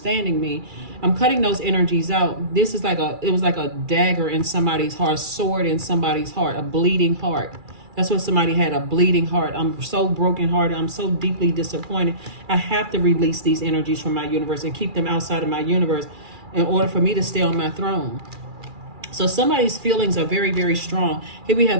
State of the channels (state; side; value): late; left; 2.4 ms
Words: me. I'm cutting those energies out. This is it was like a dagger in somebody's heart, a sword in somebody's heart, a bleeding heart. That's what somebody had, a bleeding heart. I'm so brokenhearted. I'm so deeply disappointed. I have to release these energies from my universe and keep them outside of my universe in order for me to stay on my throne. So somebody's feelings are very, very strong. Here we have